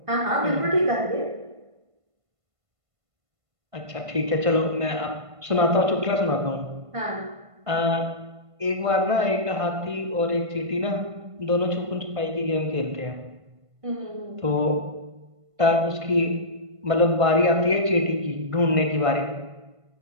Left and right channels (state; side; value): late; left; 1.5 ms